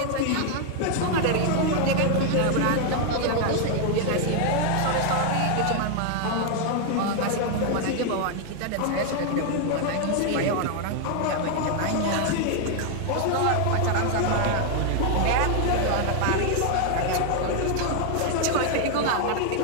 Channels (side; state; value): both; different; correlation 0.00